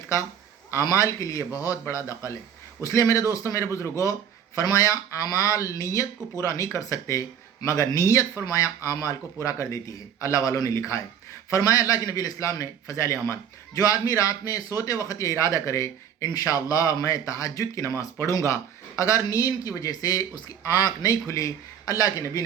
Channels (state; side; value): quieter; left; 8.5 dB